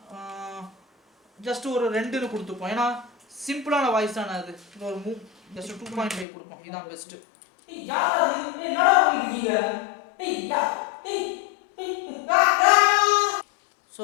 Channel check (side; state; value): right; drops out; at 6.2 s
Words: ஜஸ்ட் ஒரு 2ன்னு கொடுத்துப்போம். ஏன்னா சிம்பிளான வாய்ஸ் தானே அது. ஒரு ஜஸ்ட் 2.5 கொடுப்போம். இதுதான் பெஸ்ட். ஸோ